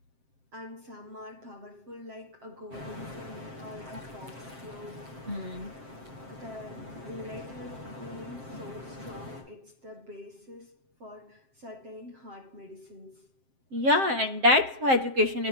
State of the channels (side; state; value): left; late; 7.6 ms